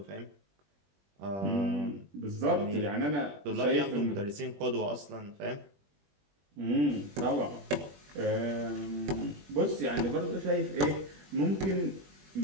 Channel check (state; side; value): late; left; 21 ms